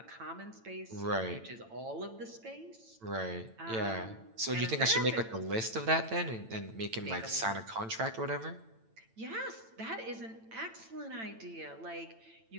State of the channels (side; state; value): left; late; 9.0 ms